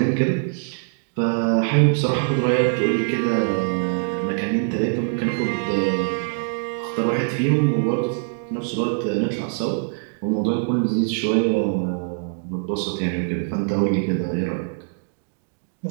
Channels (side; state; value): left; silent; digital silence